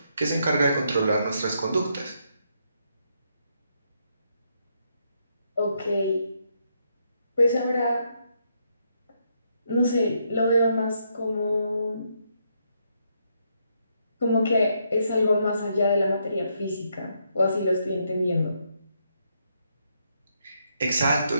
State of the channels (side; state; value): both; inverted; correlation -0.77